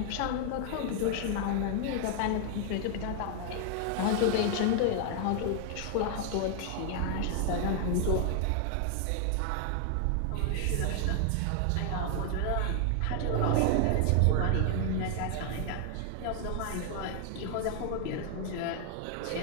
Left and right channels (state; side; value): different; both; correlation 0.00